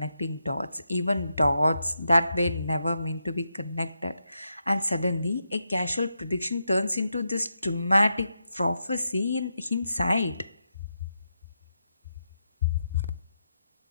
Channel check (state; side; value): inverted; both; correlation -0.85